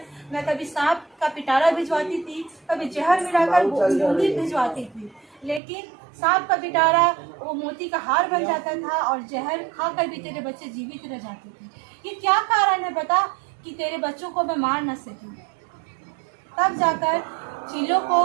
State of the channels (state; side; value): drops out; left; at 5.6 s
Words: मैं कभी सांप का पिटारा भिजवाती थी, कभी जहर मिलाकर बूंदी भिजवाती थी, लेकिन सांप का पिटारा वो मोती का हार बन जाता था और जहर खाकर भी तेरे बच्चे जीवित रह जाते थे। ये क्या कारण है बता कि तेरे बच्चों को मैं मार न सकी? तब जाकर चिल्लो को